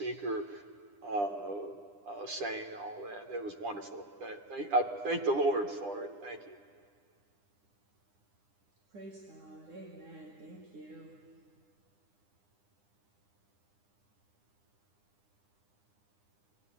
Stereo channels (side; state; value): left; late; 9.9 ms